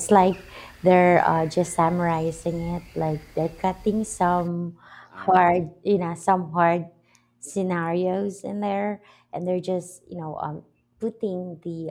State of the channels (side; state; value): both; identical; correlation 1.00